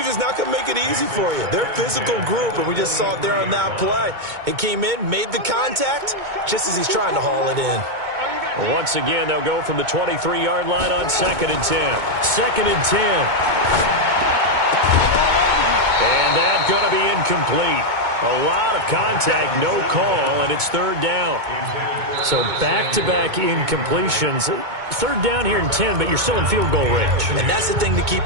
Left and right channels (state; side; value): late; left; 2.2 ms